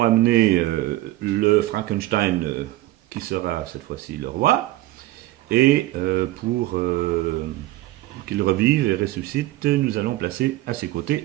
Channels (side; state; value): left; quieter; 16.6 dB